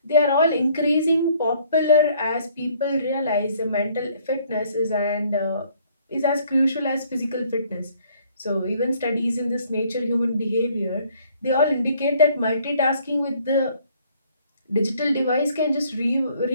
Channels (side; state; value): both; inverted; correlation -0.62